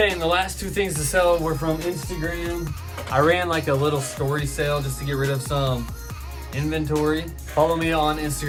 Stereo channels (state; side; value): identical; both; correlation 1.00